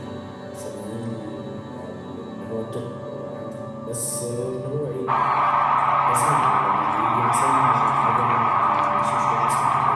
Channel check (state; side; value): identical; both; correlation 1.00